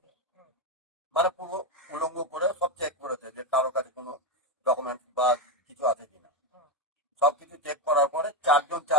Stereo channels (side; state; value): both; normal; correlation 0.09